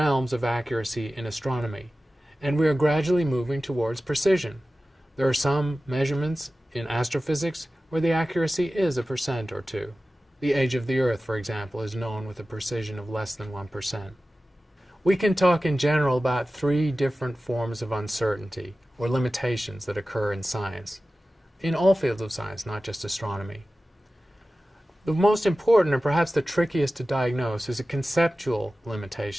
of accuracy in astronomy, and we are gradually moving towards precision. There are some measurements in astrophysics where the accuracy is 1% or 2. The age of the Earth, for example, is known with a precision of less than 1%. We can talk in general about 3 different forms of uncertainty, or limitations that occur in science, in all fields of science, not just astronomy. The most important, and perhaps the trickiest to diagnose, is a conceptual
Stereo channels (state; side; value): normal; both; correlation 0.95